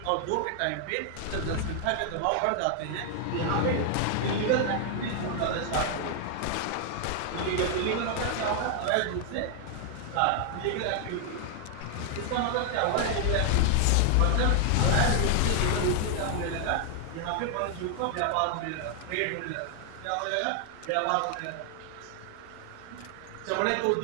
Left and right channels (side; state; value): both; different; correlation 0.00